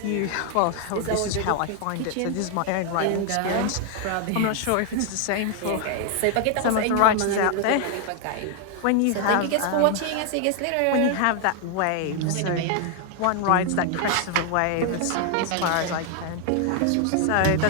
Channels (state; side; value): different; both; correlation 0.00